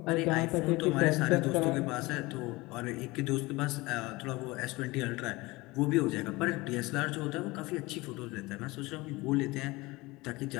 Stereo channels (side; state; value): right; quieter; 22.0 dB